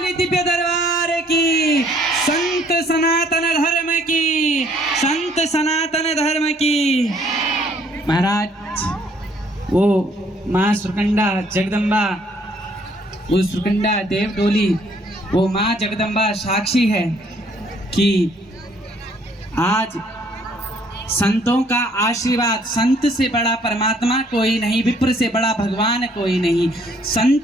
दिव्य दरबार की, संत सनातन धर्म की, संत सनातन धर्म की। महाराज वो माँ सुरकंडा जगदम्बा, वो सुरकंडा देव डोली, वो माँ जगदम्बा साक्षी है कि आज संतों का आशीर्वाद, संत से बड़ा परमात्मा कोई नहीं, विप्र से बड़ा भगवान कोई नहीं।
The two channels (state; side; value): normal; both; correlation 0.63